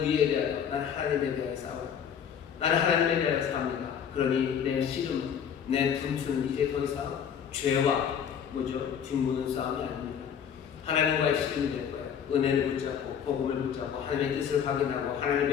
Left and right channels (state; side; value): quieter; right; 8.1 dB